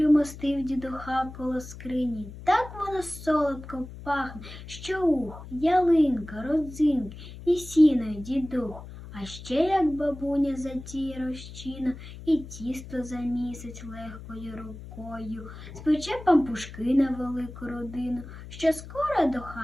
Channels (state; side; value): noise; left; hum, 14 dB below the sound